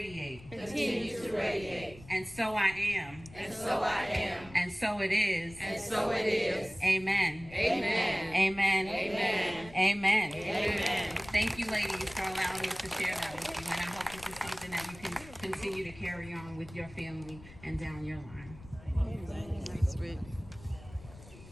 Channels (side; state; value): left; noise; rumble, 19 dB below the sound